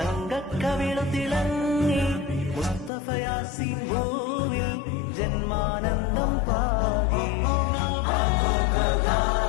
തിളങ്ങി മുസ്തഫ യാസീൻ ഭൂവിൽ ജന്മാനന്ദം പാകി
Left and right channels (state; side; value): drops out; right; at 2.9 s